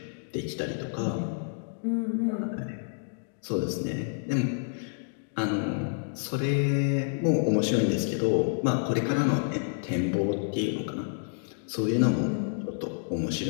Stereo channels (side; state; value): right; silent; digital silence